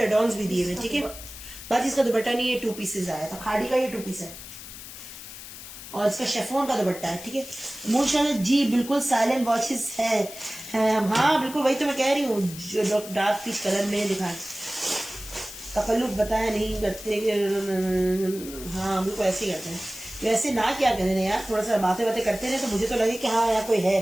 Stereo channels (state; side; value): noise; left; hiss, 13 dB below the sound